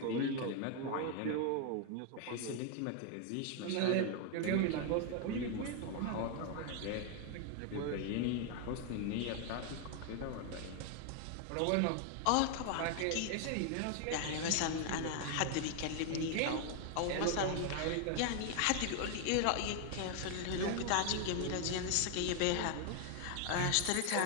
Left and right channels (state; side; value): different; both; correlation 0.00